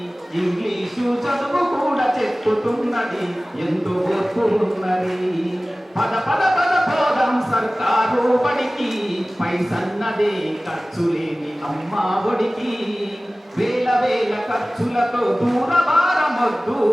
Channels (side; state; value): both; normal; correlation 0.98